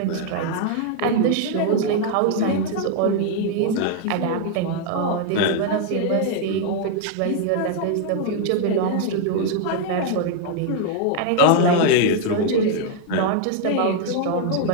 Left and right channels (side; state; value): both; different; correlation 0.00